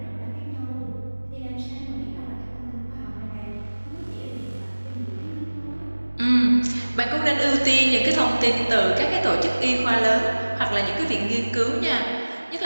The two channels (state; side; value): inverted; both; correlation -1.00